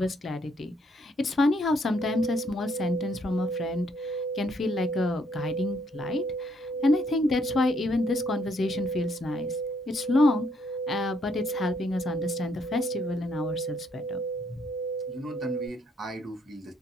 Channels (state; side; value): normal; both; correlation 0.70